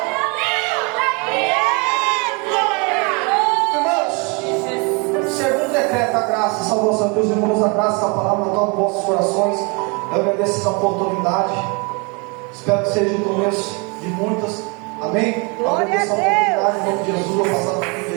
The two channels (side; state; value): left; quieter; 31.5 dB